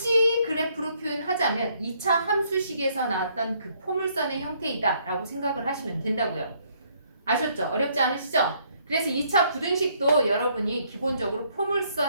그래프로 표현하자면 2차 함수식에서 나왔던 그 포물선의 형태이다 라고 생각을 하시면 된다고요. 아셨죠? 어렵지 않으시죠? 그래서 2차 부등식도 여러분이 기본적으로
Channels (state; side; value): inverted; both; correlation -0.68